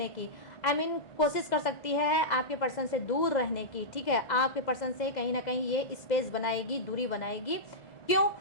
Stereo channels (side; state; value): right; late; 2.0 ms